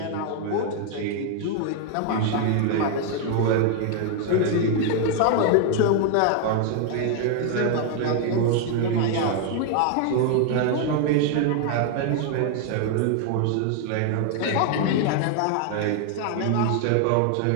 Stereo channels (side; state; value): both; different; correlation 0.00